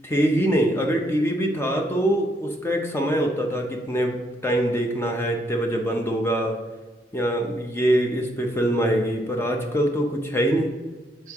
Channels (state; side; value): normal; both; correlation 0.72